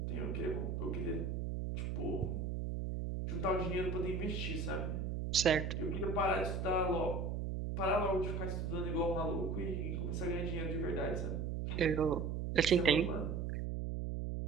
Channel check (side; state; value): right; noise; hum, 2 dB below the sound